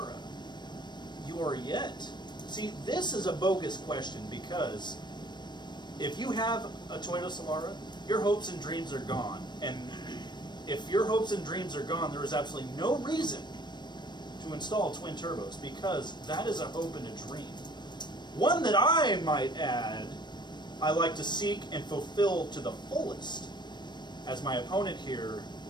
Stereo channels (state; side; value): late; right; 0.22 ms